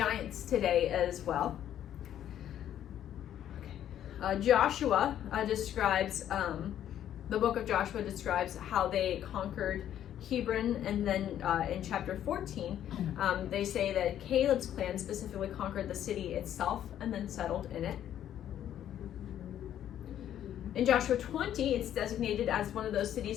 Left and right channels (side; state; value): right; quieter; 10.9 dB